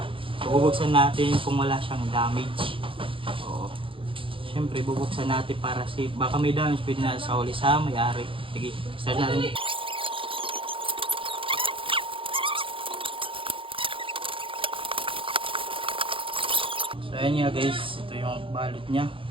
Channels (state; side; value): late; left; 0.25 ms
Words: So bubuksan natin kung wala siyang damage. O, syempre bubuksan natin para safe. Baka may damage, pwede na sa huli sa may-ari. Sige, start natin. So ayan nga guys, ito yung balot niya.